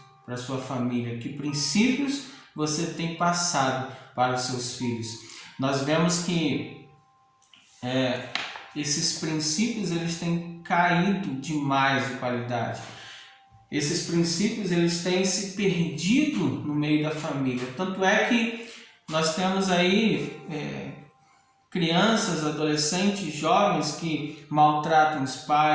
para a sua família? Que princípios você tem passado para os seus filhos? Nós vemos que esses princípios eles têm caído demais de qualidade. Esses princípios eles têm se perdido no meio da família. Tanto é que nós temos aí crianças, adolescentes, jovens que maltratam os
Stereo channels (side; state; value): both; identical; correlation 1.00